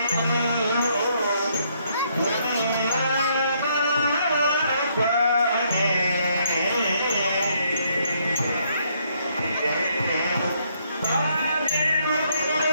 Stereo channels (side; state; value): both; inverted; correlation -0.71